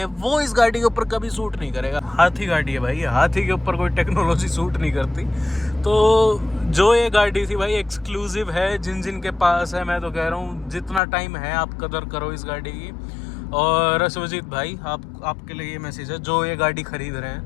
वो इस गाड़ी के ऊपर कभी सूट नहीं करेगा। हाथी गाड़ी है भाई, हाथी के ऊपर कोई टेक्नोलॉजी सूट नहीं करती। तो जो ये गाड़ी थी भाई एक्सक्लूसिव है, जिन के पास है, मैं तो कह रहा हूँ जितना टाइम है आप कदर करो इस गाड़ी की। और सुजीत भाई, आपके लिए ये मैसेज है, जो ये गाड़ी खरीद रहे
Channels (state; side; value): drops out; right; at 11.0 s